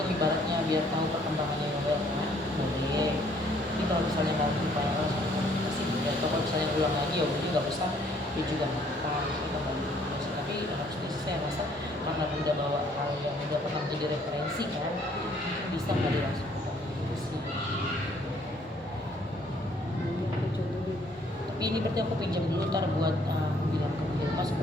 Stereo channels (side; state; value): both; normal; correlation 0.63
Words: ibaratnya biar tahu perkembangannya Yoel kan boleh. Tapi kalau misalnya nggak lupa sama komunikasi ya, atau kalau misalnya ulang lagi ya udah nggak usah, dia juga apa kita balik. Tapi harusnya sih saya rasa karena udah bawa hal yang udah pernah jadi referensi kan, bisa kali langsung ke komunikasi. Tapi ini berarti aku pinjam dulu ntar buat aku bilang ke Bilma